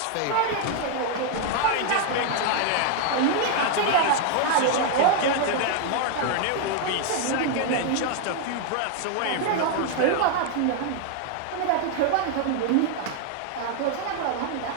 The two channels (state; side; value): different; both; correlation 0.00